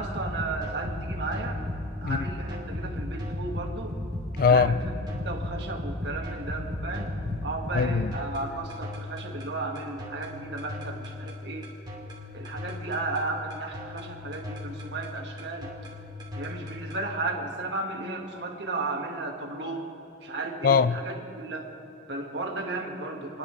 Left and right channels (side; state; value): both; normal; correlation 0.18